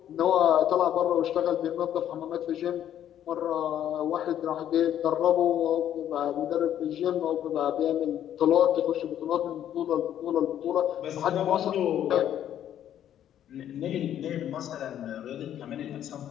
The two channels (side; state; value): right; quieter; 10.7 dB